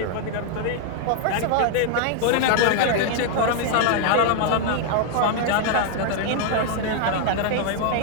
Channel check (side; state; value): both; different; correlation -0.01